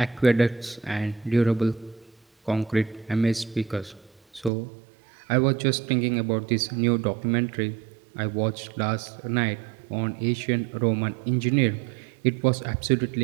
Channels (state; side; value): drops out; left; at 4.5 s